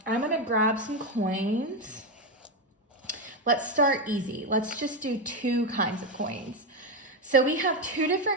I'm going to grab some coins. Let's start easy. Let's just do two kinds of coins. So we have two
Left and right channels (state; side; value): normal; both; correlation 0.09